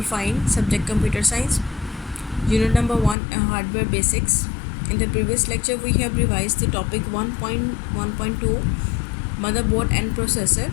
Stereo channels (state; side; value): drops out; right; at 3.2 s